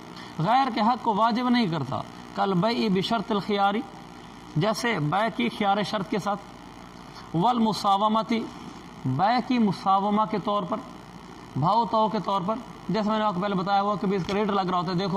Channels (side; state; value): both; identical; correlation 1.00